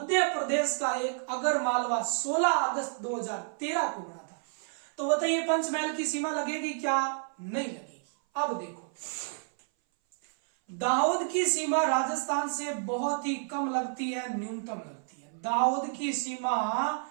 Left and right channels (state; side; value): silent; left; 58 dB below the other